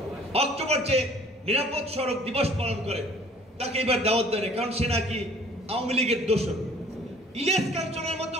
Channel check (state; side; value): normal; both; correlation 0.53